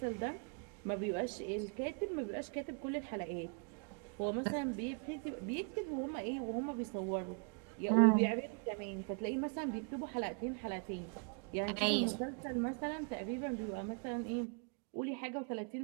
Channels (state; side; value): quieter; left; 39.5 dB